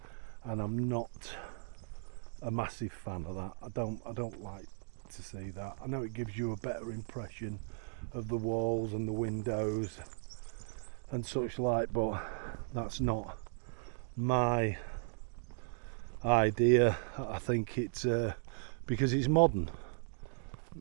and I'm not a massive fan of that. I don't like to see that. I know it gives you a better impression of the walls and the windows and such like, but that's not my idea. I think it's because it's modern.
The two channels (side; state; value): left; silent; digital silence